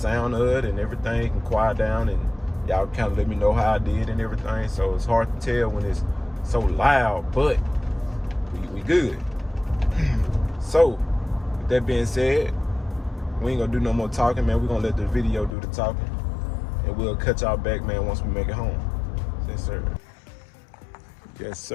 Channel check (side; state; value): right; drops out; at 15.5 s